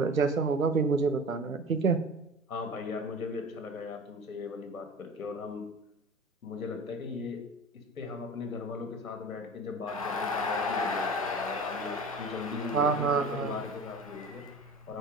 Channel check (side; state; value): both; normal; correlation 0.37